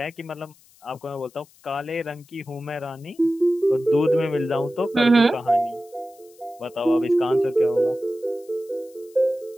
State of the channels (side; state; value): left; noise; hiss, 28 dB below the sound